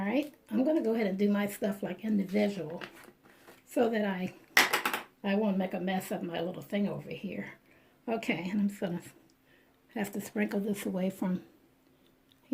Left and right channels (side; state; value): both; identical; correlation 1.00